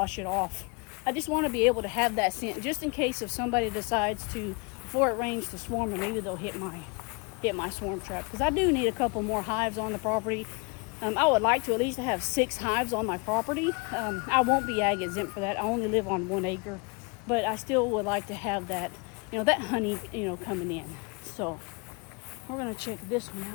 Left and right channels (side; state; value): right; quieter; 31.4 dB